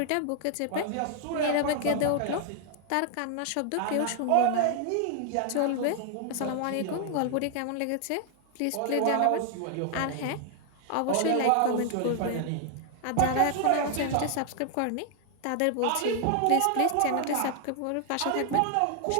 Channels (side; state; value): both; different; correlation 0.00